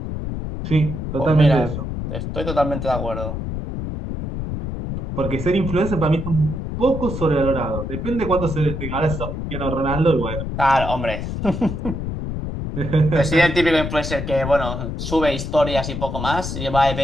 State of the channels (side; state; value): left; noise; rumble, 5 dB below the sound